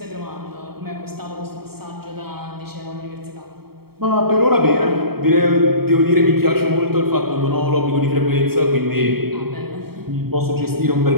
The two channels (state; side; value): late; left; 0.95 ms